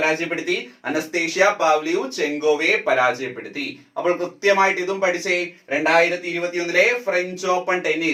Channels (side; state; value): both; identical; correlation 1.00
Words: അനസ്തേഷ്യ പാവ്ലിയുചെങ്കോവയെ പരാജയപ്പെടുത്തി. അപ്പോൾ കൃത്യമായിട്ട് ഇതും പഠിച്ചേ. 2021 French open